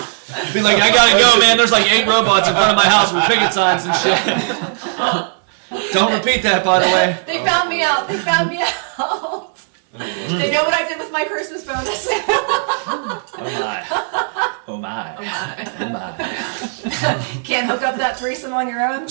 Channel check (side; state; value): left; silent; digital silence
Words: Be like, I gotta go, man. There's like 8 robots in front of my house with picket signs and shit. Don't repeat that, by the way. They found me out. They found me out. They know what I did with my Christmas bonus. Oh my. Oh my. Can't hook up that threesome on your own.